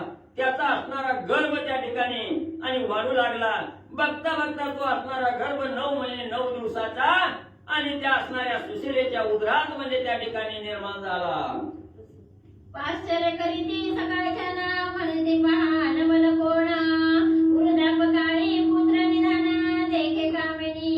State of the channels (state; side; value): identical; both; correlation 1.00